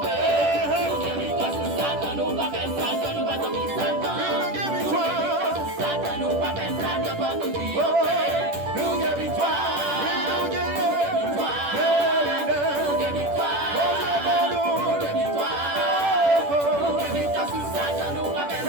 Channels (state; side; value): late; left; 10 ms